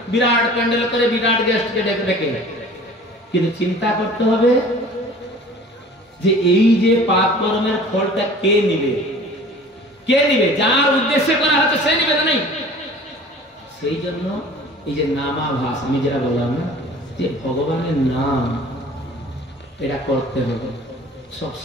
বিরাট প্যান্ডেল করে বিরাট গেস্টকে ডেকে ডেকে। কিন্তু চিন্তা করতে হবে যে এই যে পাপ কর্মের ফলটা কে নিবে? কে নিবে? যার উদ্দেশ্যে করা হচ্ছে সে নিবে না? নেই। সেই জন্য এই যে নামাভাস, আমি যেটা বললাম না, যে ভগবানের নাম এটা করতে হবে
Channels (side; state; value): both; normal; correlation 0.45